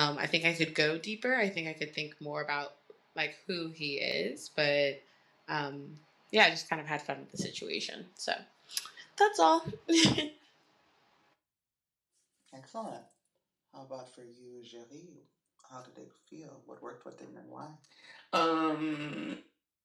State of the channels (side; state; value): both; identical; correlation 1.00